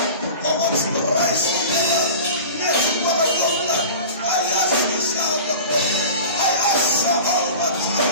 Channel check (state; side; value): inverted; both; correlation -0.37